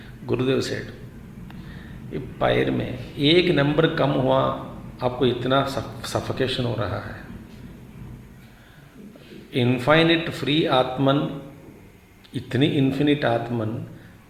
Gurudev said, पैर में एक नंबर कम हुआ, आपको इतना सफोकेशन हो रहा है. इनफाइनिट फ्री आत्मन, इतनी infinite atman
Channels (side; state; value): both; identical; correlation 1.00